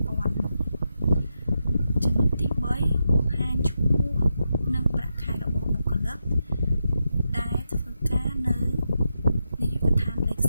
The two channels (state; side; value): inverted; both; correlation -0.85